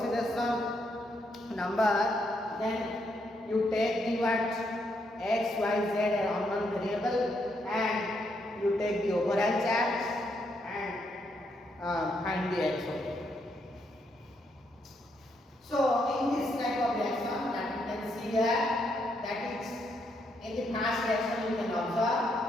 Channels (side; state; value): both; normal; correlation 0.77